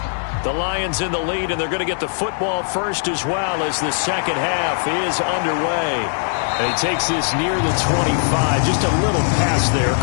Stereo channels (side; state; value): right; silent; 66 dB below the other